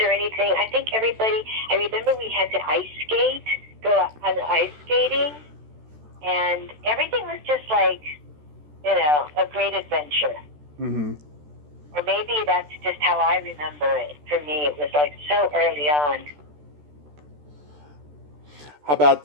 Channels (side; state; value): left; late; 14 ms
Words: anything. I think I remember we had to ice skate, go on ice skating, and everything was just like, a great adventure. Mm-hmm. Or maybe that's just how I remember it. For me, it was like so early on. How about